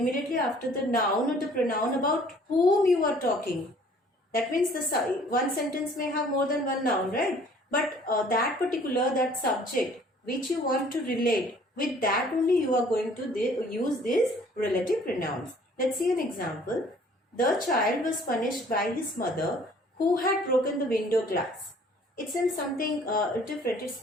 after the noun or the pronoun about whom you are talking. That means the one sentence may have more than one noun, right? But that subject which you want to relate, with that only you are going to use these relative pronouns. Let's see an example. The child was punished by his mother who had broken the window glass. It's in something different. It's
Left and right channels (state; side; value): normal; both; correlation 0.55